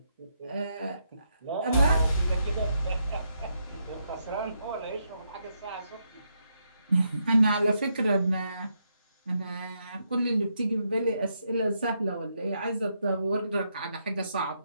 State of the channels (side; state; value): both; inverted; correlation -0.80